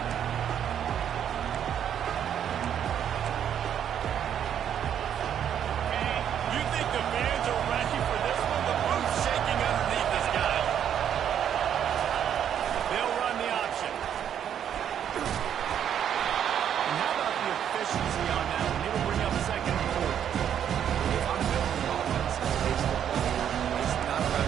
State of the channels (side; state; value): left; quieter; 9.3 dB